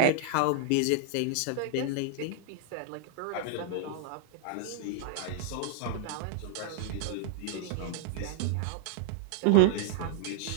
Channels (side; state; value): both; different; correlation -0.01